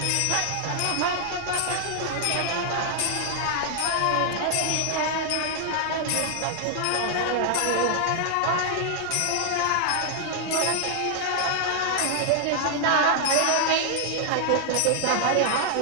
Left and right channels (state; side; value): different; both; correlation 0.00